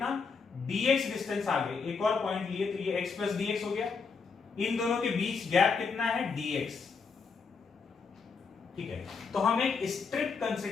dx डिस्टेंस आगे एक और पॉइंट लिए, तो ये x प्लस dx हो गया। इन दोनों के बीच गैप कितना है, dx, ठीक है। तो हम एक स्ट्रिप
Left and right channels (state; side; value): quieter; right; 5.1 dB